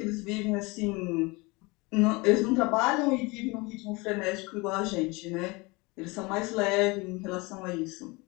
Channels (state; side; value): quieter; right; 25.4 dB